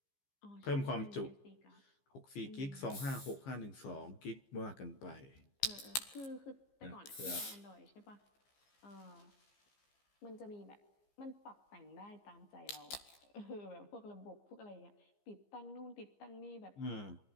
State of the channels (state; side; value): late; right; 15 ms